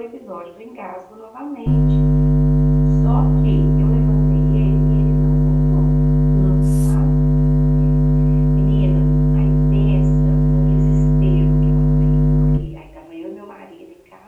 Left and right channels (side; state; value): both; identical; correlation 1.00